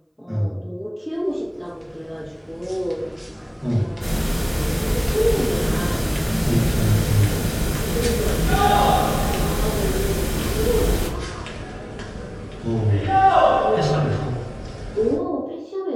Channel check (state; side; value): identical; both; correlation 1.00